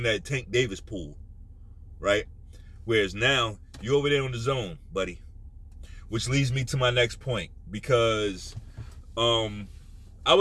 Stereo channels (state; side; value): identical; both; correlation 1.00